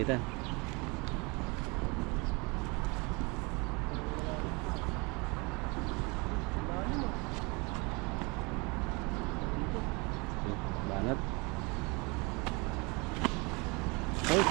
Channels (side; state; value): left; quieter; 28.5 dB